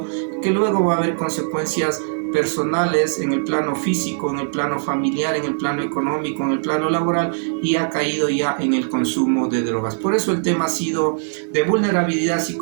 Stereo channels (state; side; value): silent; left; digital silence